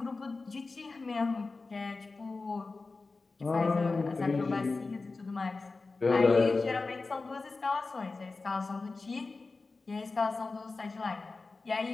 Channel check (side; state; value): right; quieter; 3.8 dB